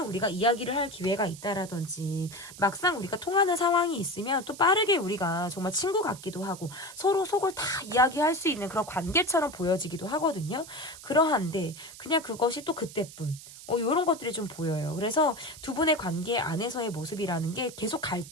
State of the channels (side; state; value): right; noise; hiss, 16 dB below the sound